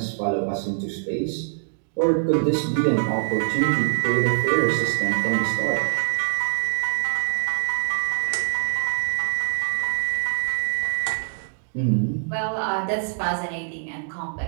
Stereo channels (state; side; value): silent; left; digital silence